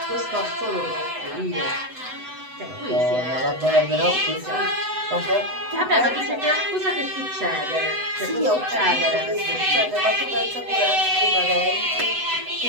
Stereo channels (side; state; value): left; late; 7.9 ms